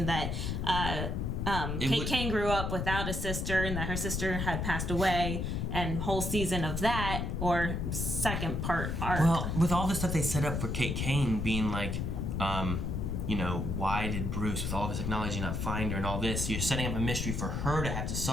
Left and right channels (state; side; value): noise; left; rumble, 1 dB below the sound